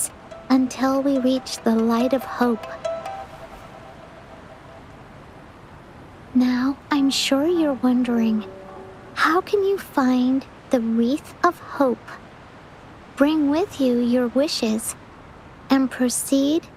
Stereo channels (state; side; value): identical; both; correlation 1.00